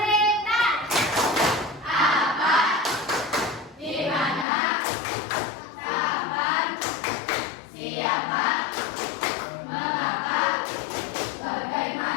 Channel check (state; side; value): drops out; right; at 4.5 s